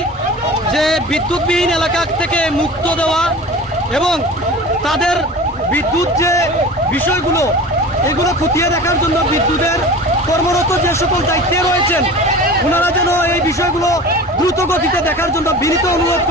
যে বিদ্যুৎবিহীন এলাকা থেকে মুক্ত দেওয়া এবং তাদের বিদ্যুৎ যে বিষয়গুলো এগুলো খতিয়ে দেখার জন্য বিদ্যুতের কর্মরত যে সকল দায়িত্বে রয়েছেন ওনারা যেন এই বিষয়গুলো দ্রুত গতিতে দেখার জন্য বিনীত অনুরোধ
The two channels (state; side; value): normal; both; correlation 0.37